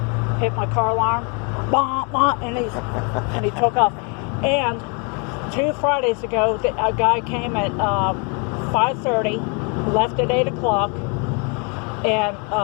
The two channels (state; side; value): quieter; right; 35.0 dB